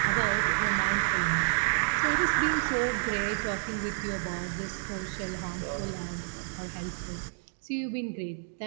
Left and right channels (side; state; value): left; silent; digital silence